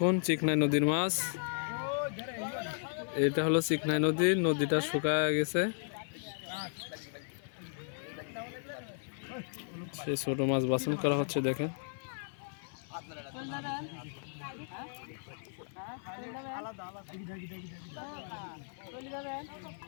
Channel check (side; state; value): right; silent; 54 dB below the other